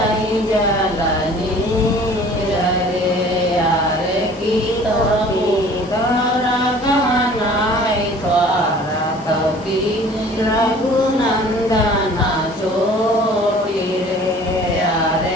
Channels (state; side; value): normal; both; correlation 0.49